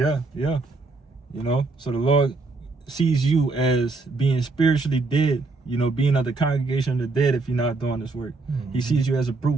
You know, so the Lord sees you as being spiritually dead, you know, being of the congregation of the dead if you're not doing this work. He sees you as a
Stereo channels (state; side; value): quieter; left; 3.7 dB